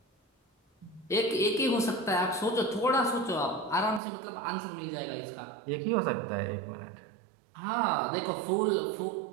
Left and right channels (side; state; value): left; drops out; at 4.0 s